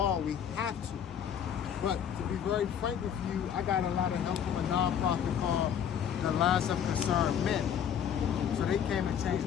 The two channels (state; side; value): quieter; right; 8.6 dB